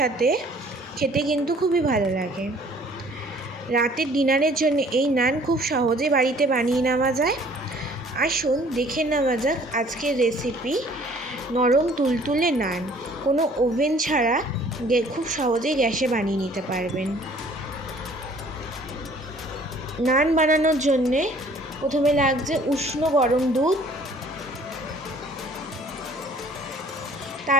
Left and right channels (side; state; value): both; normal; correlation 0.55